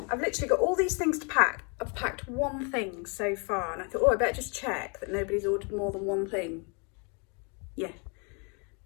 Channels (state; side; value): quieter; right; 34.8 dB